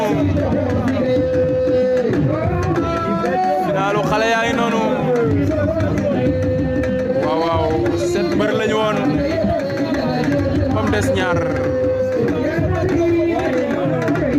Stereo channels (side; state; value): both; identical; correlation 1.00